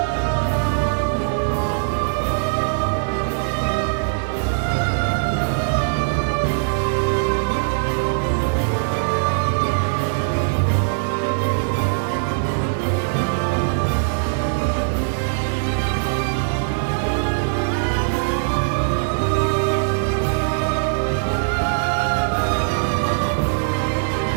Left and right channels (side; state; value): left; silent; digital silence